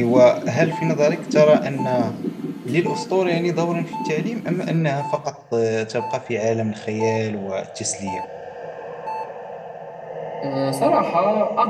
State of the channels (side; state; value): both; identical; correlation 1.00